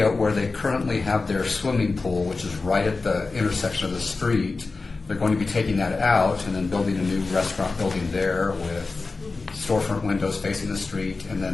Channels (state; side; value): quieter; right; 3.9 dB